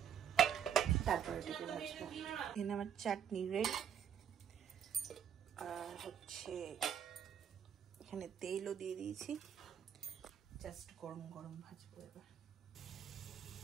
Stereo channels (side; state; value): left; quieter; 8.6 dB